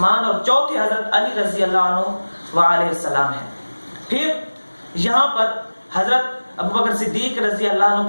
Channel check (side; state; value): both; inverted; correlation -1.00